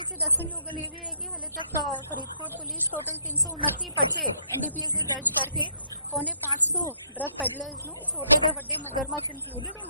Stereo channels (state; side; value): inverted; both; correlation -0.72